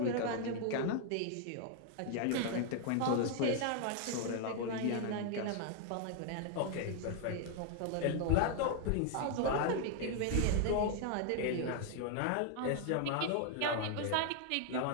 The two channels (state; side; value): different; both; correlation 0.00